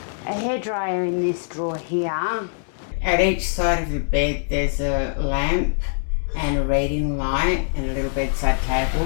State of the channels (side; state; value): right; silent; digital silence